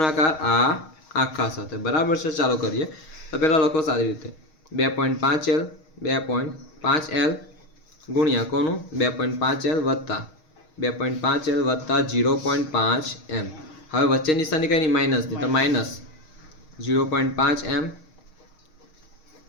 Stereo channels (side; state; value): right; late; 6.4 ms